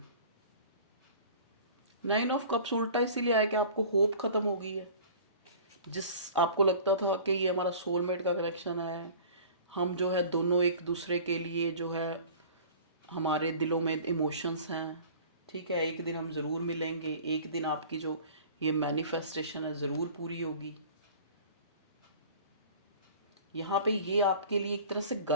9 ऑफ कप्स उल्टा इसीलिए आया कि आपको होप खत्म हो गई है। जिस आपको लगता था कि ये हमारा सोलमेट का कनेक्शन है, हम जो है दोनों एक दूसरे के लिए जो है, हमारे दिलों में इमोशंस हैं, ठीक है, एक दिन हम ज़रूर मिलेंगे, एक दिन आपकी जो ये मैनिफेस्टेशन है ज़रूर पूरी होगी। यहाँ पे ये आपके लिए एक तरह से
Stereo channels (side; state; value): both; inverted; correlation -0.43